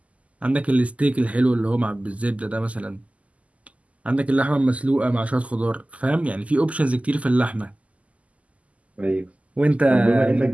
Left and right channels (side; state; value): left; late; 0.068 ms